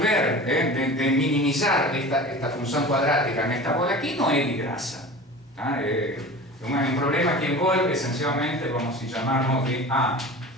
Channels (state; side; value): normal; both; correlation 0.36